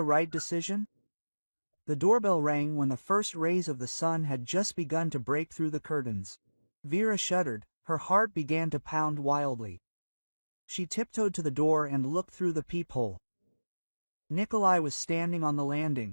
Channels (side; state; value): both; inverted; correlation -1.00